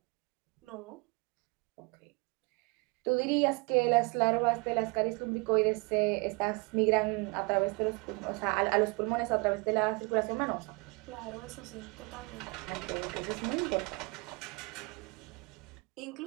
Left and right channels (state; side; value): quieter; left; 29.0 dB